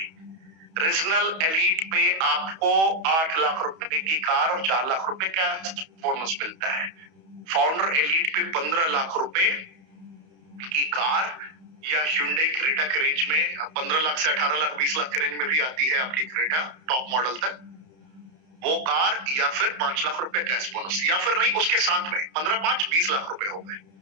रीजनल एलीट पे आपको 8 लाख रुपए की कार और 4 लाख रुपए कैश बोनस मिलता है। फाउंडर एलीट पे 15 लाख रुपए की कार या Hyundai क्रेटा के रेंज में 15 लाख से 18 लाख 20 लाख के रेंज में भी आती है आपकी क्रेटा टॉप मॉडल तक, वो कार, या फिर 5 लाख रुपए कैश बोनस, या फिर नहीं उसके साथ में 15-5 20 लाख रुपए हो गए।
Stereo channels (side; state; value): left; late; 31 ms